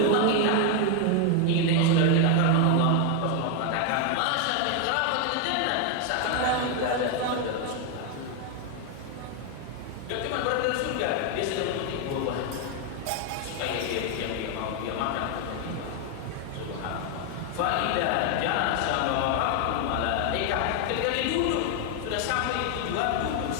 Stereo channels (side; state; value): both; different; correlation 0.01